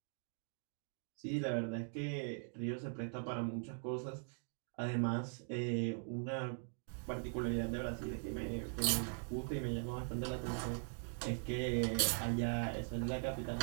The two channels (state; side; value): silent; left; 50 dB below the other